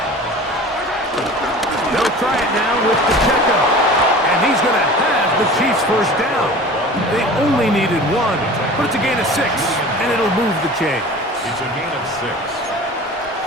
They'll try it now with Pacheco. And he's going to have the Chiefs' 1st down. They only needed 1, but it's a gain of 6, and it'll move the chains. It's a gain of 6.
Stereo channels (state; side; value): normal; both; correlation 0.40